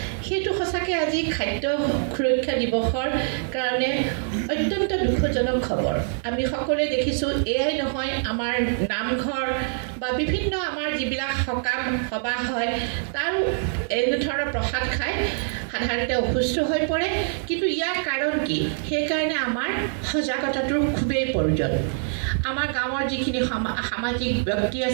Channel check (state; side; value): silent; left; 62 dB below the other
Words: সেইটো সঁচাকৈ আজি খাদ্য সুৰক্ষা দিৱসৰ কাৰণে অত্যন্ত দুখজনক খবৰ আমি সকলোৱে দেখিছোঁ এয়াই নহয় আমাৰ নামঘৰ বা বিভিন্ন আমাৰ যিবিলাক সকাম সভা হয় তাৰ এনেধৰণৰ প্ৰসাদ খাই সাধাৰণতে অসুস্থ হৈ পৰে কিন্তু ইয়াৰ কাৰণ কি সেইকাৰণে আমাৰ সজাগতাটোৰ খুবেই প্ৰয়োজন আমাৰ গাঁৱৰ যিখিনি সামাজিক ব্যক্তি